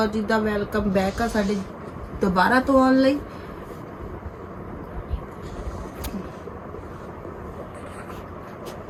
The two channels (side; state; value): both; identical; correlation 1.00